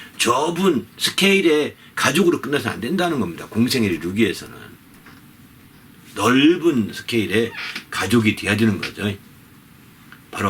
좁은 스케일의 가족으로 끝나서 안 된다는 겁니다. 공생애를 이루기 위해서는 넓은 스케일의 가족이 돼야 되는 거죠. 바로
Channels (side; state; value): both; identical; correlation 1.00